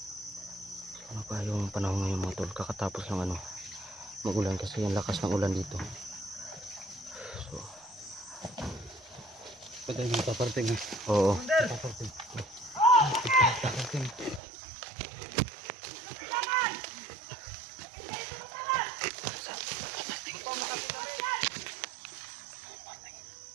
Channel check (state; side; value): drops out; left; at 14.4 s